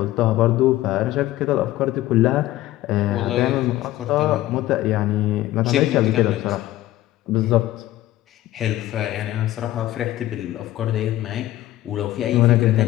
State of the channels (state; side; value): quieter; right; 15.3 dB